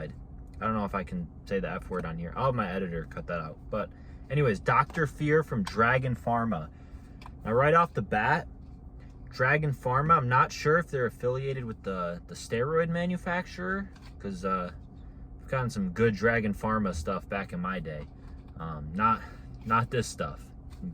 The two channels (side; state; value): both; identical; correlation 1.00